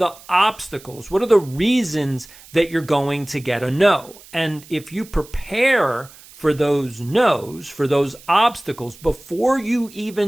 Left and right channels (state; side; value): noise; right; hiss, 22 dB below the sound